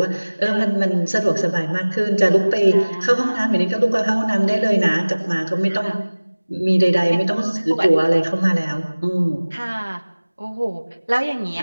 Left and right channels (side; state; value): both; inverted; correlation -1.00